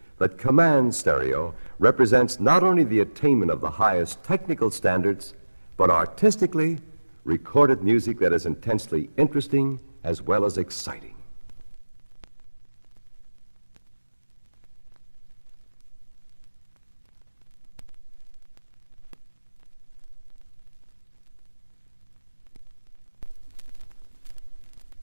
that command stereo represents not only the attainment of the highest technical standards, but artistically recorded music that is intensely interesting as well as exciting.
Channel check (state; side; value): inverted; both; correlation -1.00